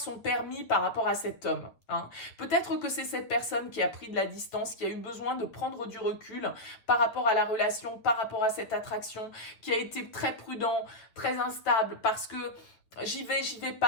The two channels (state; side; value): late; right; 8.9 ms